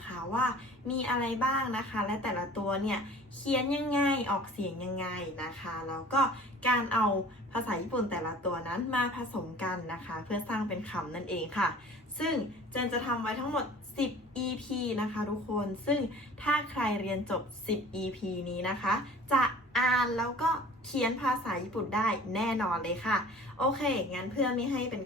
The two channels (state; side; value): normal; both; correlation 0.46